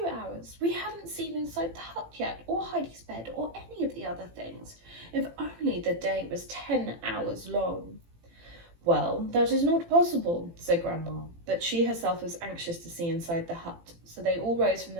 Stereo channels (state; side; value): late; left; 18 ms